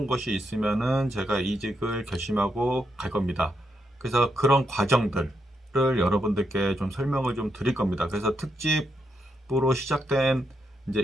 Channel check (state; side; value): normal; both; correlation 0.81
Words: 것이 있으면은 제가 이직을 결심하고 갈 겁니다. 그래서 그런 과정들을 여러분들께 좀 설명을 좀 드릴 겁니다. 그래서 특집으로 시작된 이제